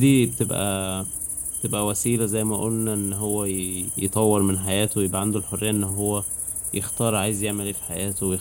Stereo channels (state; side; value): normal; both; correlation 0.97